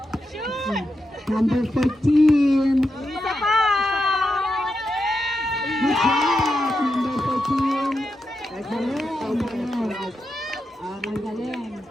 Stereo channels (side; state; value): both; normal; correlation 0.87